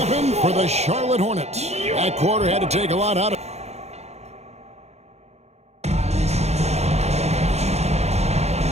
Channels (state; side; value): late; left; 0.31 ms